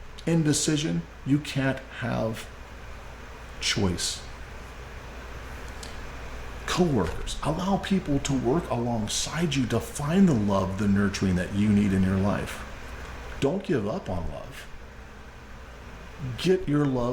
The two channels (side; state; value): both; identical; correlation 1.00